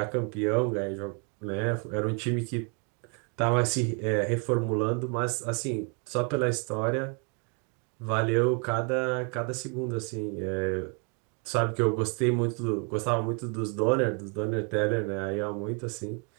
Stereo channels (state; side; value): quieter; left; 37.4 dB